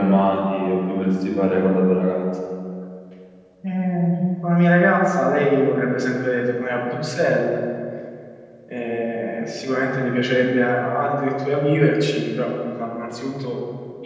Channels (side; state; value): both; identical; correlation 1.00